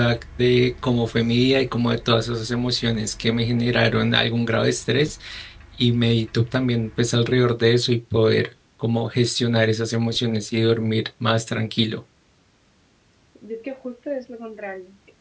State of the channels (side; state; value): both; identical; correlation 1.00